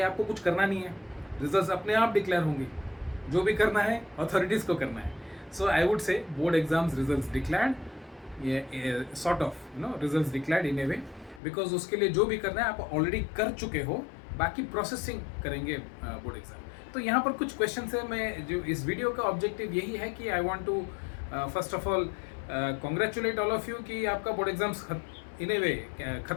आपको कुछ करना नहीं है. रिजल्ट्स अपने आप डिक्लेयर होंगे. जो भी करना है अथॉरिटीज को करना है. So I would say board exams results declared, sort of results declared in a way, because उसके लिए जो भी करना है आप ऑलरेडी कर चुके हो. बाकी प्रोसेसिंग करेंगे बोर्ड एग्जाम. तो यहाँ पर कुछ क्वेश्चन है. मैं जो इस वीडियो का ऑब्जेक्टिव यही है कि I want to first of all congratulate all of you कि आपका बोर्ड एग्जाम्स इन ए वे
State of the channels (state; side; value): drops out; right; at 11.4 s